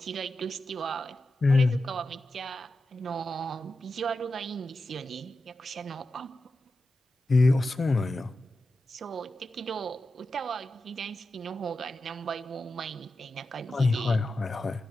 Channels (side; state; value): both; normal; correlation 0.91